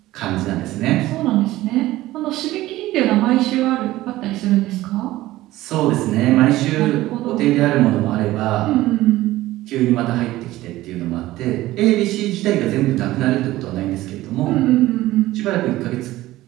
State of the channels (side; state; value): left; quieter; 16.6 dB